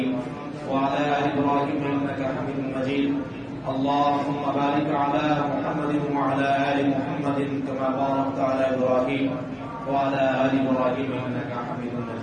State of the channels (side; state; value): both; identical; correlation 1.00